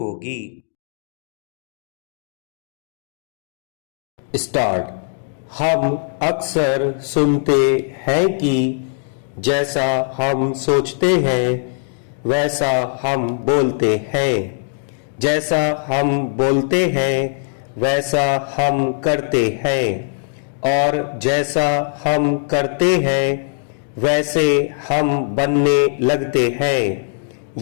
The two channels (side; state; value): right; silent; digital silence